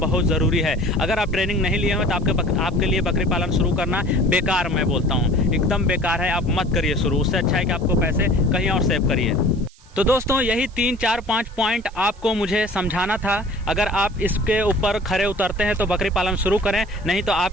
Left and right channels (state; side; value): noise; right; hiss, 28 dB below the sound